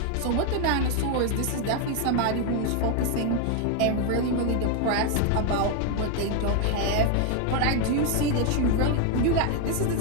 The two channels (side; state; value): both; different; correlation 0.01